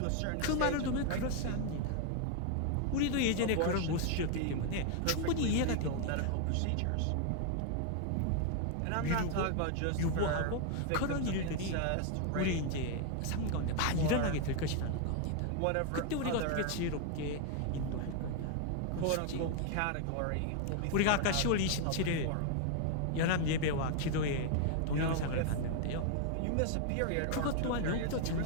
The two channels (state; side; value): different; both; correlation 0.00